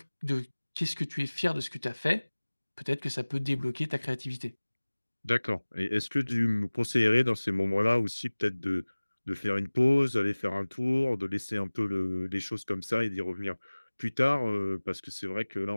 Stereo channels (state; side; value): inverted; both; correlation -1.00